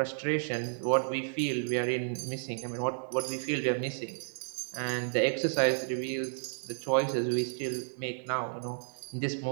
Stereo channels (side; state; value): left; silent; 56 dB below the other